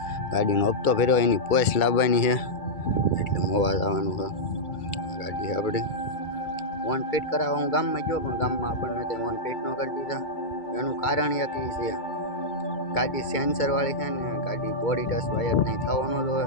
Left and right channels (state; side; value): late; right; 2.3 ms